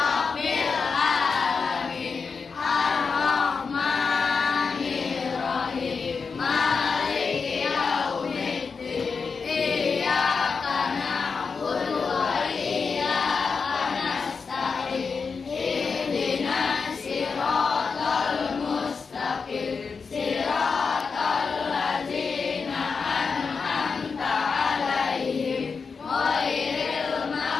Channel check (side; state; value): right; quieter; 5.2 dB